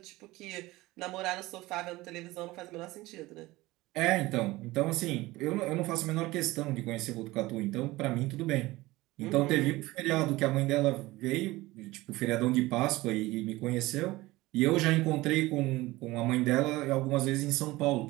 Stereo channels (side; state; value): left; quieter; 19.4 dB